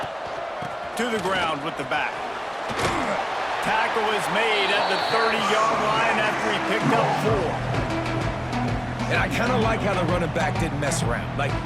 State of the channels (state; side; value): identical; both; correlation 1.00